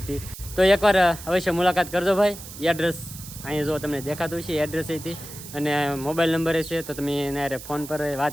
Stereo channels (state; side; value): noise; right; hiss, 14 dB below the sound